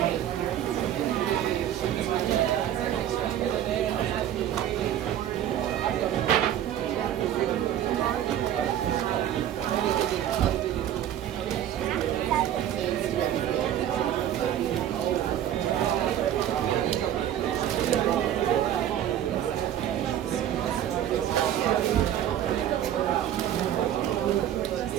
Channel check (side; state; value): left; quieter; 11.1 dB